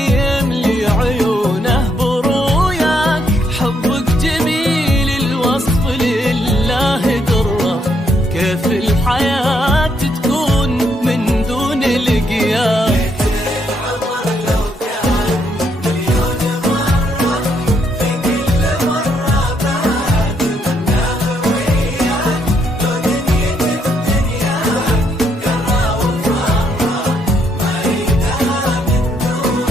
عيونه بروياك. حبك جميل الوصف لله درة، كيف الحياة تكون من دون لقياك.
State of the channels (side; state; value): both; normal; correlation 0.74